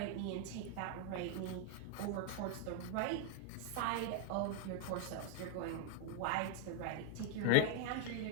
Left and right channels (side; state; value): both; different; correlation 0.00